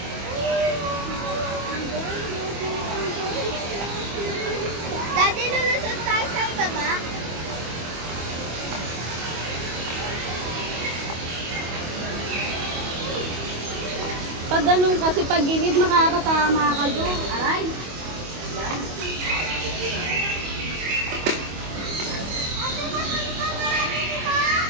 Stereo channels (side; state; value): left; late; 25 ms